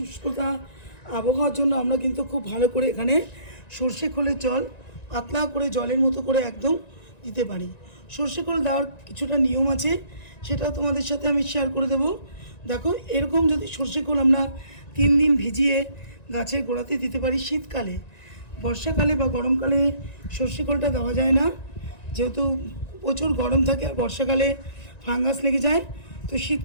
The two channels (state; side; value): late; right; 1.9 ms